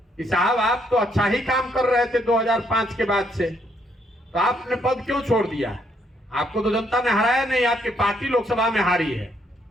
कि साहब आप तो अच्छा ही काम कर रहे थे 2005 के बाद से, तो आपने पद क्यों छोड़ दिया? आपको तो जनता ने हराया नहीं, आपकी पार्टी लोकसभा में हारी है।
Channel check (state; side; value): normal; both; correlation 0.71